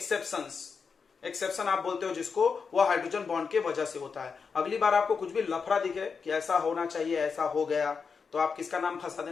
एक्सेप्शन आप बोलते हो जिसको, वो हाइड्रोजन बॉन्ड के वजह से होता है। अगली बार आपको कुछ भी लफड़ा दिखे कि ऐसा होना चाहिए, ऐसा हो गया, तो आप किसका नाम फंसा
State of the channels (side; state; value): right; quieter; 5.5 dB